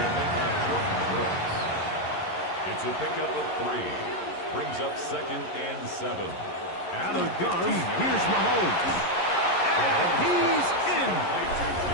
It's a pickup of 3. Brings up second and 7. Out of the gun, here's Mahomes. And he's in.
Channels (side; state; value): right; late; 11 ms